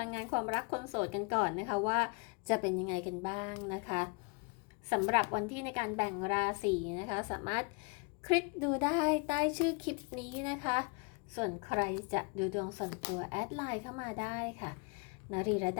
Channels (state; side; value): quieter; right; 31.9 dB